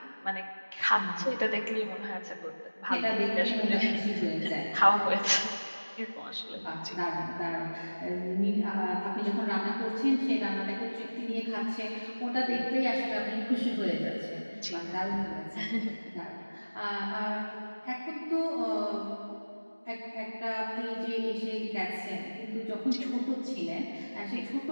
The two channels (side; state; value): both; inverted; correlation -1.00